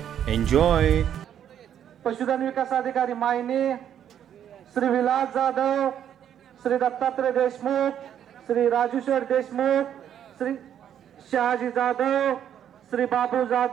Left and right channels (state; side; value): quieter; left; 9.7 dB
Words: एन्जॉय. पशुधन विकास अधिकारी मायनी श्री विलास जाधव, श्री दत्तात्रय देशमुख, श्री राजूशेठ देशमुख, श्री शहाजी जाधव, श्री बाबू